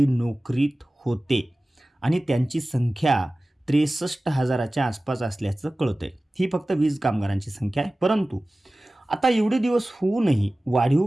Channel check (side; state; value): both; normal; correlation 0.97